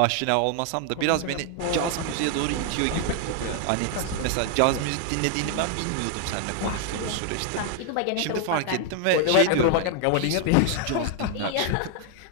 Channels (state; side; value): different; both; correlation 0.00